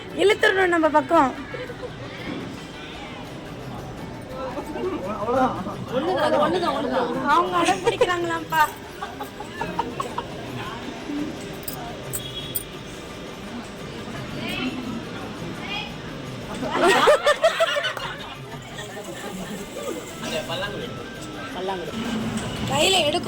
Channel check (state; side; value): identical; both; correlation 1.00